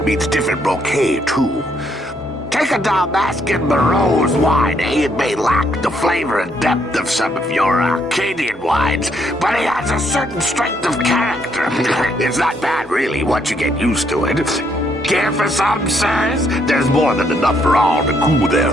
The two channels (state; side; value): normal; both; correlation 0.72